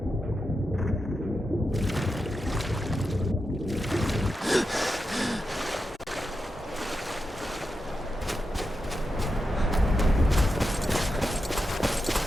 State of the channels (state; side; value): normal; both; correlation 0.88